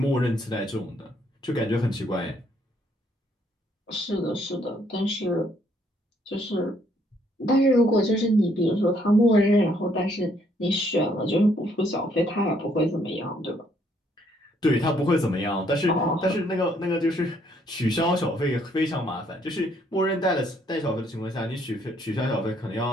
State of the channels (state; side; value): normal; both; correlation 0.68